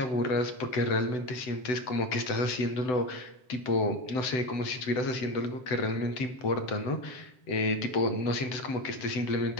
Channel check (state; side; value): late; right; 7.9 ms